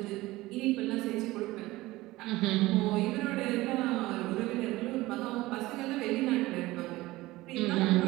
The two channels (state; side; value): quieter; left; 18.8 dB